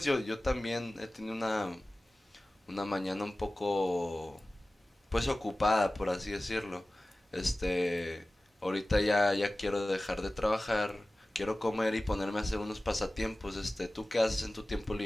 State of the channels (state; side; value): normal; both; correlation 0.97